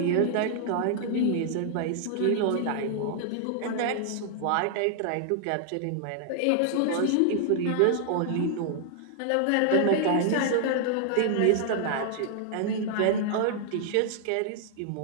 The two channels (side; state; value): both; different; correlation -0.01